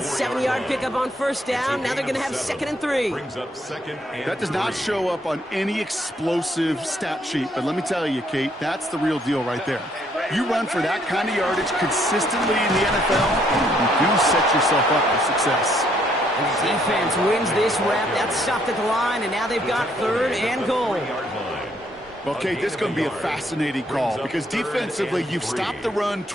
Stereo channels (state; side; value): normal; both; correlation 0.69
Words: 7-yard pickup on 1st down. Now they're going to have 2nd and 3. That does not show up on any explosive stat sheet, but let me tell you, Kate, that's the real deal right there. You run for that kind of yardage consistently in the NFL, you do set yourself up for success. And the defense wins this rep. That's stopped at the line, and now they've got 3rd and goal. Well, Kate, this is going to be a fascinating call because defensively, you've stopped the run